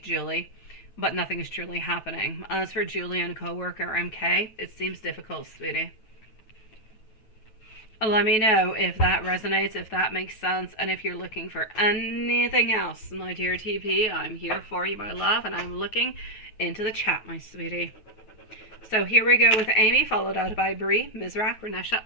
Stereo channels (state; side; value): late; right; 9.3 ms